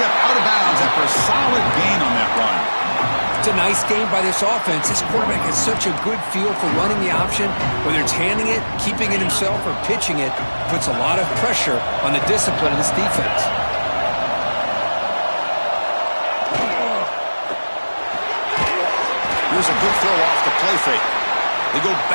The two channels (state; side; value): inverted; both; correlation -1.00